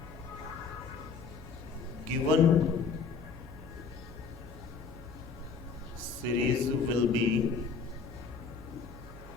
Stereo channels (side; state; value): right; quieter; 5.3 dB